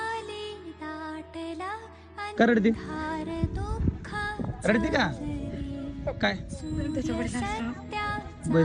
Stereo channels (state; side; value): identical; both; correlation 1.00